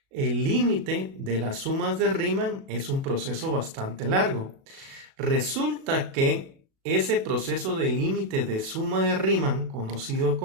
El límite de las sumas de Riemann es un proceso bastante largo. Resulta que ese proceso de límite de suma de Riemann, conocido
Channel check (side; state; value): left; late; 37 ms